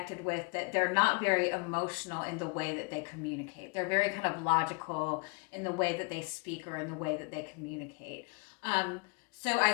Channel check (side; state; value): right; quieter; 30.5 dB